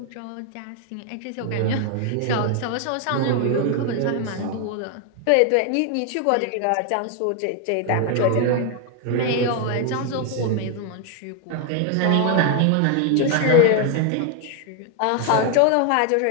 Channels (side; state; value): both; different; correlation 0.01